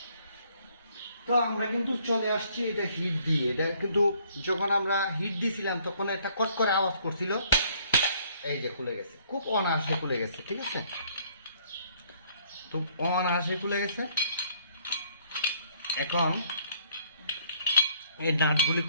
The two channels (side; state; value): both; inverted; correlation -0.63